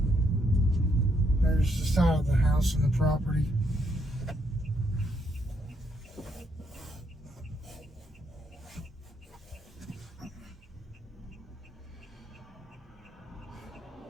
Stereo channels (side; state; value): both; normal; correlation 0.75